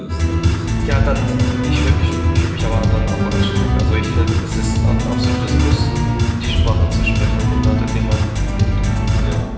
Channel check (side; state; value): both; identical; correlation 1.00